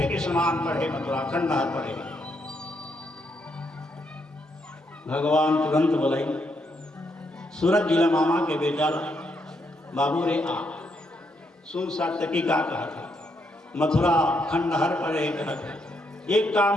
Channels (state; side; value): normal; both; correlation 0.77